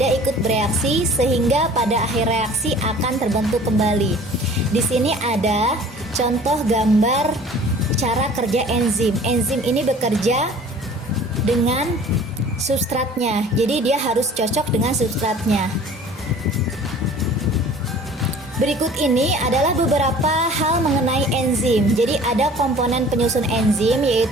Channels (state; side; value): normal; both; correlation 0.47